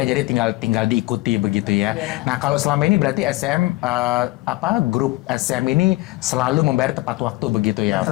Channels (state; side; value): quieter; right; 20.2 dB